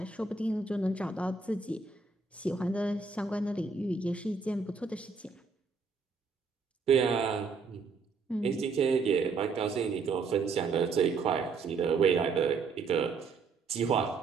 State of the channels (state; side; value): quieter; left; 4.7 dB